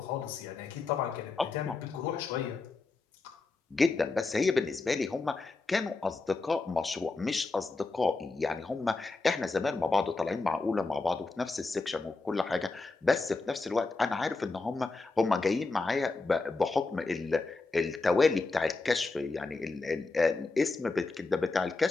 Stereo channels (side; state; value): right; quieter; 3.7 dB